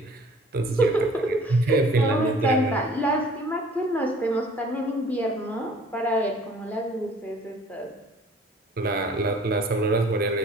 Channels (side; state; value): both; normal; correlation 0.52